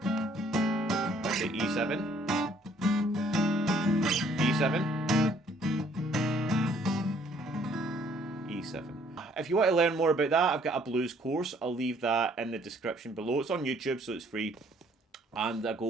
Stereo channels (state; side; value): normal; both; correlation 0.62